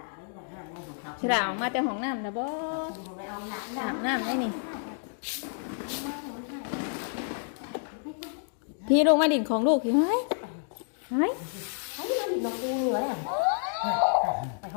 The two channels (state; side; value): silent; right; digital silence